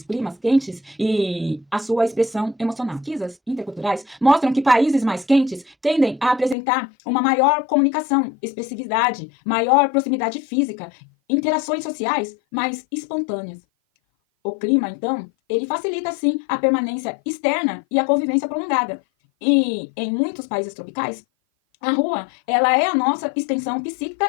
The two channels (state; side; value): drops out; right; at 6.6 s